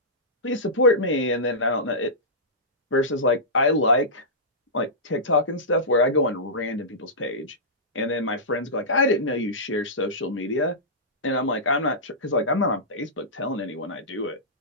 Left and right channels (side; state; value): both; normal; correlation -0.16